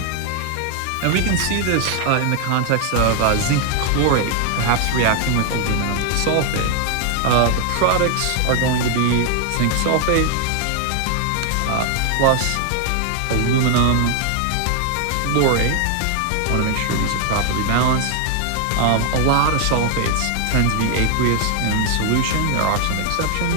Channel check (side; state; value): both; different; correlation 0.00